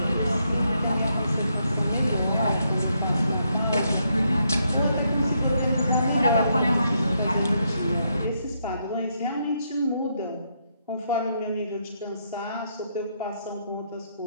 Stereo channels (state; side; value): inverted; both; correlation -0.77